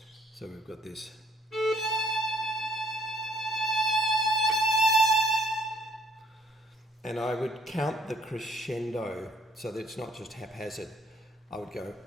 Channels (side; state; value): both; normal; correlation 0.62